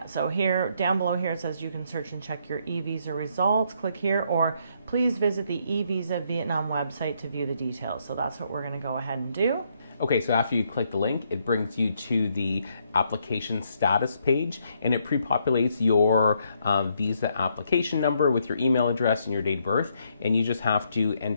so here, down below here, it says you can search and check your eVisa results. Click here, or please visit the eVisa Vietnam website to view the details. So that's what we're going to go ahead and do. Okay, so after you click the link, it brings you to the application status page, and it pre-populates your visa application number with your email address and your date of birth, and you just have to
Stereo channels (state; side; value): inverted; both; correlation -0.73